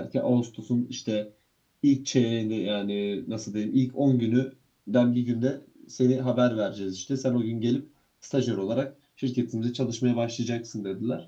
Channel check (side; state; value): both; identical; correlation 1.00